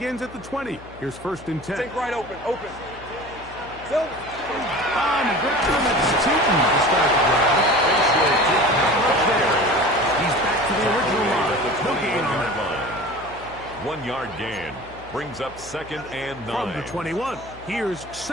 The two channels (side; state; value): left; noise; hum, 19 dB below the sound